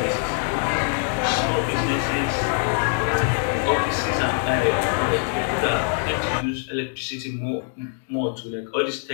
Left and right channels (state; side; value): silent; right; 62 dB below the other